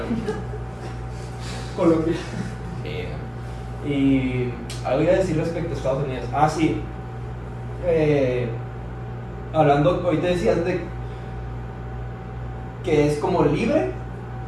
Colombia. Y algo iba a decir respecto a Estados Unidos. Ah, sí. Hablando, ahorita decías de que es como libre,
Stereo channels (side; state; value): both; identical; correlation 1.00